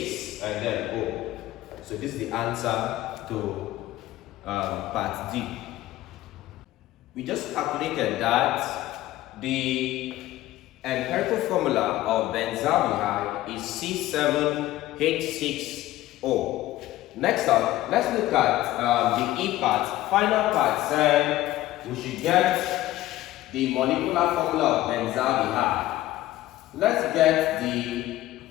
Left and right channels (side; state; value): right; quieter; 15.6 dB